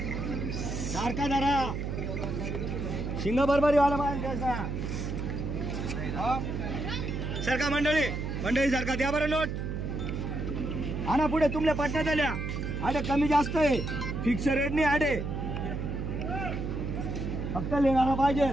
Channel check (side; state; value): right; noise; hum, 3 dB below the sound